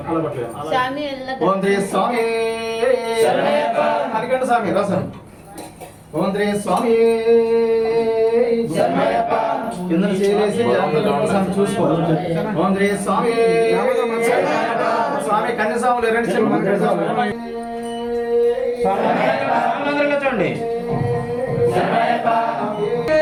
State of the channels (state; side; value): identical; both; correlation 1.00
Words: ఓం శ్రీ స్వామి శరణమయ్యప్ప, హరికంఠ స్వామి రసం, ఓం శ్రీ స్వామి శరణమయ్యప్ప, కింద చేసి చూసుకో, ఓం శ్రీ స్వామి శరణమయ్యప్ప, స్వామి కన్యస్వాములు 2 చూడండి, శరణమయ్యప్ప,